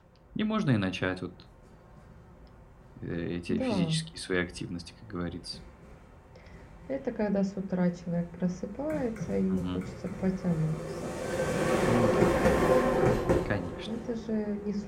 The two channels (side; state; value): both; identical; correlation 1.00